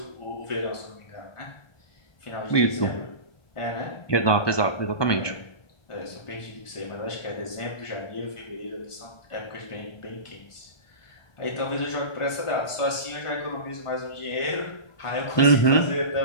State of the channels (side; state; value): right; late; 1.2 ms